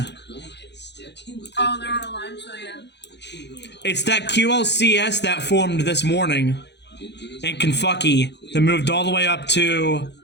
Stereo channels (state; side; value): late; right; 0.50 ms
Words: Oh, they're on a line, so yeah. It's that QLCS that formed this morning in Kentucky that moved all the way up to